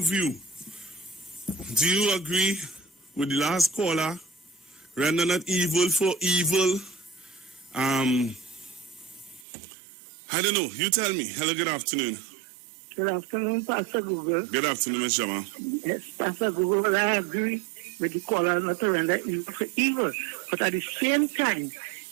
view? Do you agree with the last caller? Render not evil for evil. I don't know. You tell me. Hello, good afternoon. Good afternoon, Pastor Google. Good afternoon, Ms. Jama. Yes, Pastor Google, I agree with the caller not to render evil for evil. But at the same time,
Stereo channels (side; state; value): left; drops out; at 9.5 s